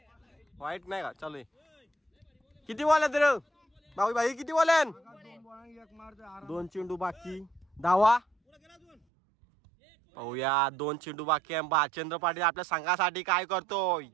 वाईट नाही का. चालू किती बॉल आहेत रे भाऊ भाई. किती बॉल आहेत. 2 चेंडू बाकी. धावा पाहूया. 2 चेंडू बाकी आहे. बालचंद्र पाटील आपल्या संघासाठी काय करतोय.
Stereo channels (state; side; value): drops out; left; at 9.0 s